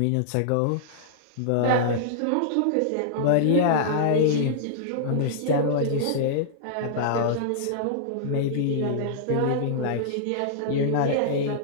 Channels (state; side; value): different; both; correlation -0.02